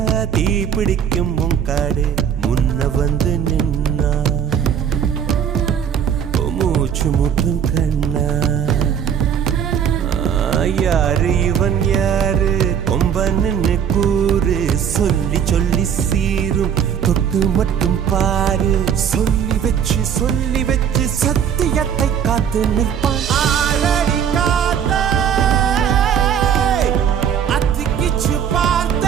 தீ பிடிக்கும் காடு முன்ன வந்து நின்னா மூச்சு முட்டும் கண்ணா யாரு இவன் யாரு கொம்பன்னு கூறு சொல்லி சொல்லி சீரும் தொட்டு மட்டும் பாரு சொல்லி வச்சு சத்தியத்தை காத்து நிற்பான் ஆளடி காத்தே அத்திக்கிச்சு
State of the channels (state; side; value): quieter; left; 8.3 dB